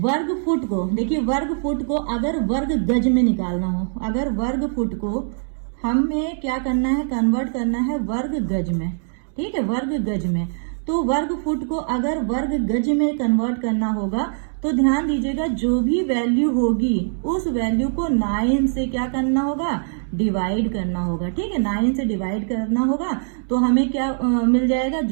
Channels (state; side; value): silent; left; digital silence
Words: फुट को, देखिए वर्ग फुट को अगर वर्ग गज में निकालना हो, अगर वर्ग फुट को हमें क्या करना है, कन्वर्ट करना है वर्ग गज में, ठीक है, वर्ग गज में। तो वर्ग फुट को अगर वर्ग गज में कन्वर्ट करना होगा तो ध्यान दीजिएगा जो भी वैल्यू होगी उस वैल्यू को 9 से क्या करना होगा, डिवाइड करना होगा, ठीक है, 9 से डिवाइड करना होगा तो हमें क्या मिल जाएगा,